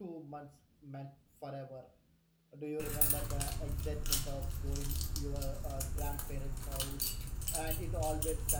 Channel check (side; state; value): both; identical; correlation 1.00